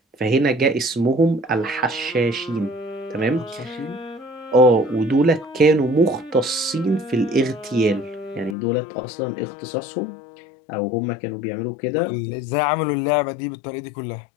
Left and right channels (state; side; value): drops out; right; at 8.6 s